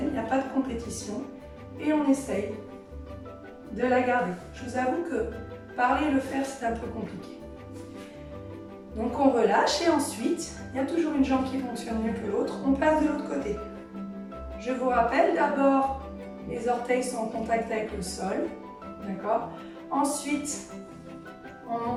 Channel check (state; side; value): identical; both; correlation 1.00